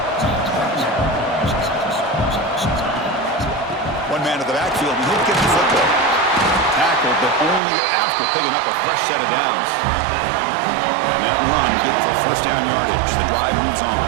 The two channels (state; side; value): drops out; left; at 7.6 s